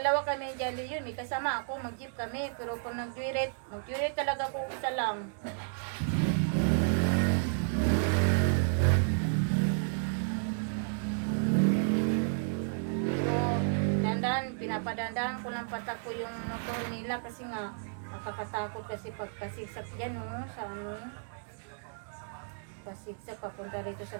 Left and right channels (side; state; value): left; silent; digital silence